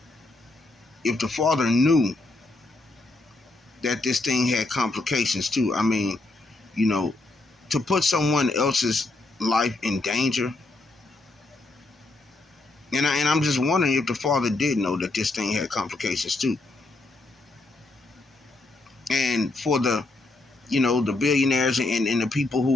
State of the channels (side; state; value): right; quieter; 3.1 dB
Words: if the father knew that this thing had complications too. I mean, you know, to put someone else's life in danger. And I'm just wondering if the father did know that this thing had complications too. And for the billionaires and the people